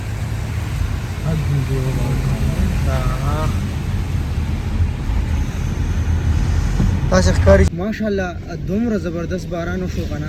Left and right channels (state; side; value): identical; both; correlation 1.00